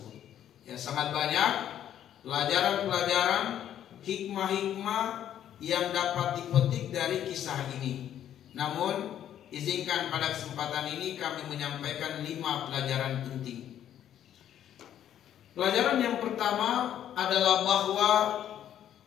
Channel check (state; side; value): quieter; right; 10.6 dB